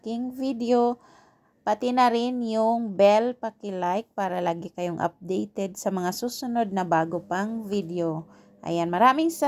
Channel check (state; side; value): identical; both; correlation 1.00